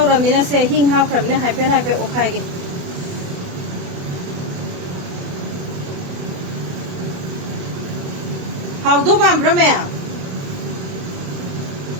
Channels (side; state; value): left; late; 28 ms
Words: ramina se hing ha pram ne hai pe okhai ge hau do bam brame